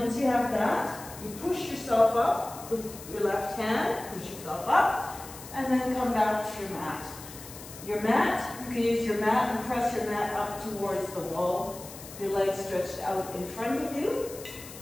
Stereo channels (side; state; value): left; noise; hiss, 15 dB below the sound